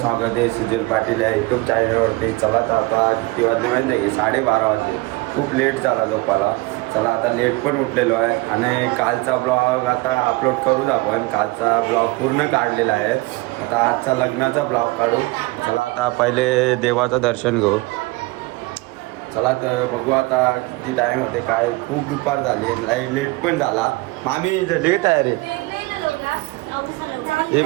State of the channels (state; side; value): quieter; left; 22.4 dB